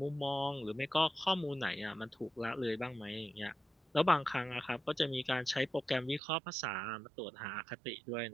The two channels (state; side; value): drops out; left; at 6.2 s